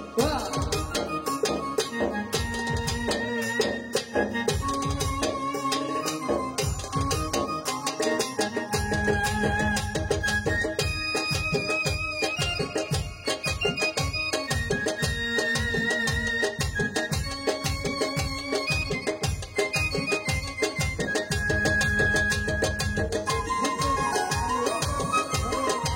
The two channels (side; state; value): both; identical; correlation 1.00